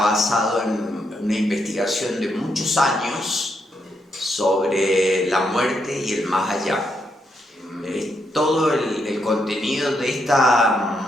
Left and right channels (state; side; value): normal; both; correlation 0.79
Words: en una investigación de muchos años sobre la muerte y el más allá. Todo el contenido de